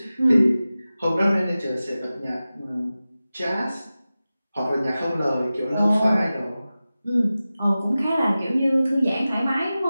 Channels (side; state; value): both; inverted; correlation -0.95